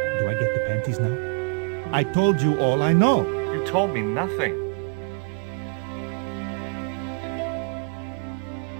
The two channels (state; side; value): quieter; left; 39.5 dB